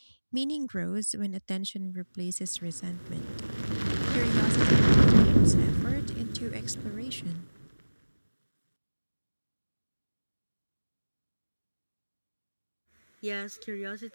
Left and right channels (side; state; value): both; inverted; correlation -1.00